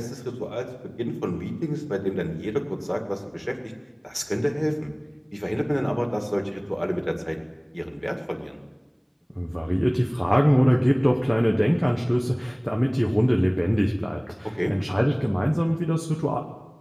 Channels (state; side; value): identical; both; correlation 1.00